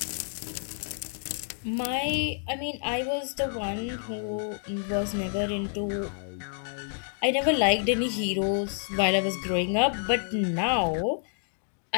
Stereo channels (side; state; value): right; silent; digital silence